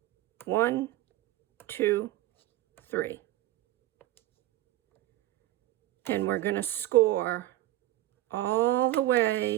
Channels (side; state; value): left; quieter; 15.7 dB